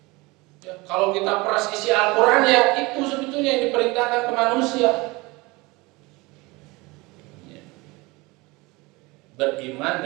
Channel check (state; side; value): quieter; left; 23.7 dB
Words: ya, kalau kita peras isi Al-Quran ya itu sebetulnya yang diperintahkan ke manusia. Ya. Beriman